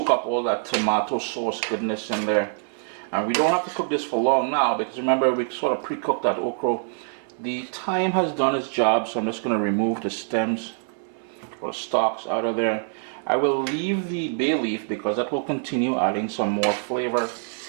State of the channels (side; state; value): left; silent; 58 dB below the other